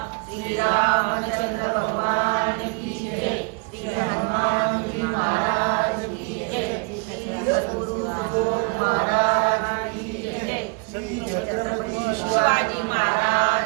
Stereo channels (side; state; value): left; quieter; 33.9 dB